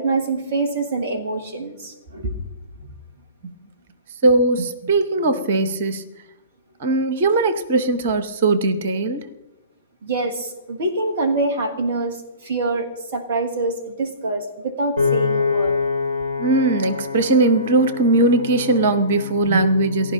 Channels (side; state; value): both; inverted; correlation -0.42